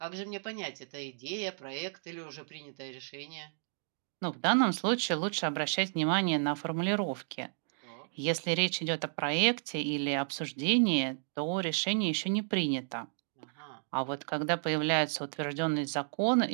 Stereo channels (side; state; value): left; silent; digital silence